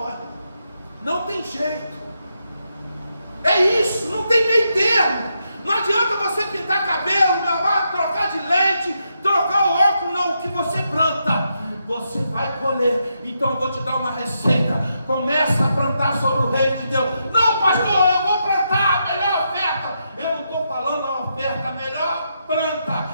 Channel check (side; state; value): both; inverted; correlation -0.82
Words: Não tem jeito. É isso, não tem meio termo. Não planta, você vai colher. Então eu vou te dar uma receita. Começa a plantar sobre o reino de Deus. Não, pastor, eu vou plantar a melhor oferta. Eu não estou falando a oferta, a melhor planta.